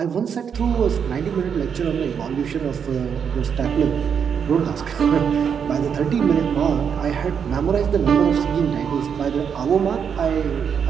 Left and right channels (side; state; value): left; quieter; 7.2 dB